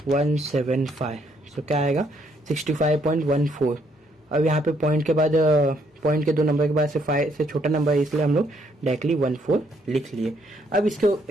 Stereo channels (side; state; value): both; normal; correlation 0.71